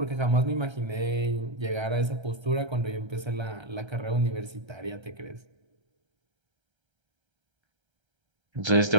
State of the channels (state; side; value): late; left; 1.3 ms